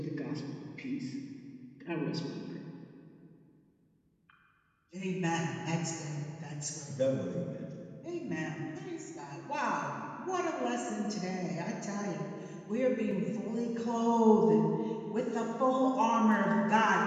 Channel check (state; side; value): identical; both; correlation 1.00